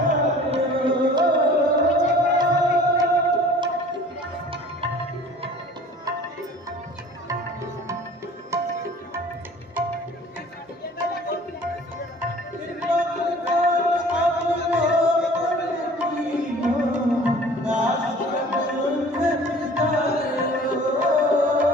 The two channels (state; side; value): normal; both; correlation 0.48